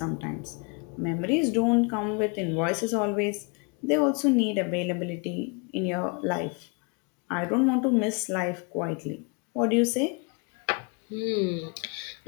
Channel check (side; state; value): right; quieter; 33.7 dB